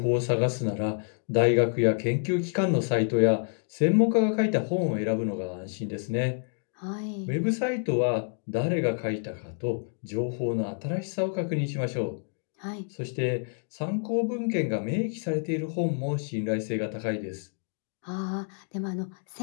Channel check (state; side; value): silent; right; 58 dB below the other